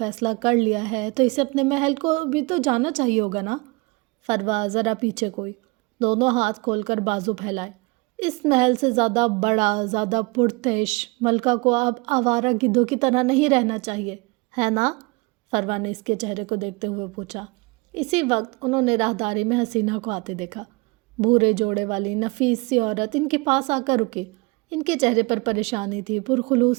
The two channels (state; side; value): quieter; left; 26.6 dB